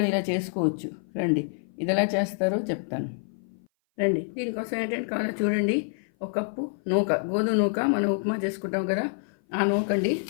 ఇలా చేసుకోవచ్చు. రండి, ఇది ఎలా చేస్తారో చెప్తాను. రండి, దీనికోసం ఏంటంటే కావాలో చూడండి. ఒక కప్పు నూక, గోధుమ నూక, మనం ఉప్మా చేసుకుంటాం కదా, ఆ నూకండి.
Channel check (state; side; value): silent; right; 57 dB below the other